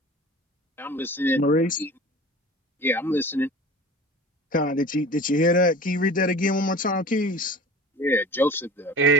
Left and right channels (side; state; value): both; normal; correlation 0.39